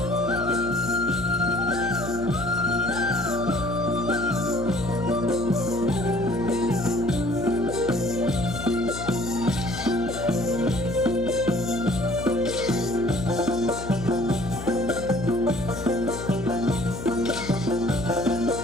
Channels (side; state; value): left; noise; hum, 9 dB below the sound